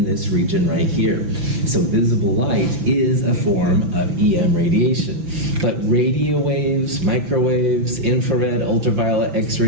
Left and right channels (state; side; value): late; left; 6.0 ms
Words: this region right here. So visible light is a form of EM radiation. But radio waves, microwaves, infrared, ultraviolet,